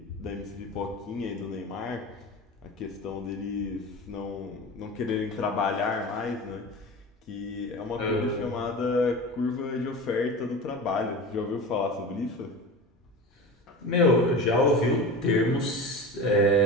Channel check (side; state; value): both; normal; correlation 0.30